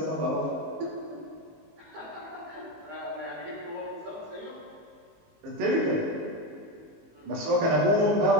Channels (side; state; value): left; late; 19 ms